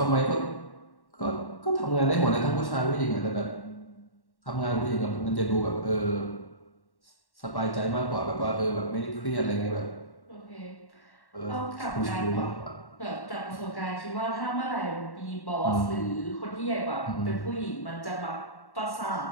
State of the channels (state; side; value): late; right; 1.1 ms